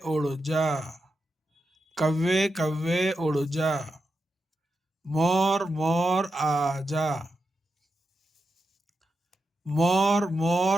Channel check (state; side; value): normal; both; correlation 0.87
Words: اڑ جا. کوے کوے اڑ جا. مور مور آجا. مور